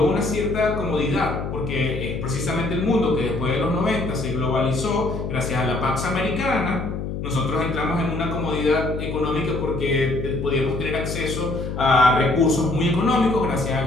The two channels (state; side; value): noise; left; hum, 5 dB below the sound